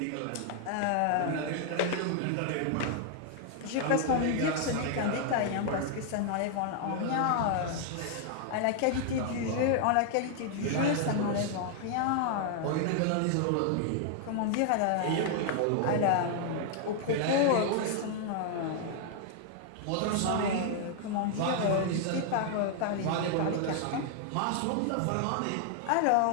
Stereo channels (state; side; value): different; both; correlation 0.00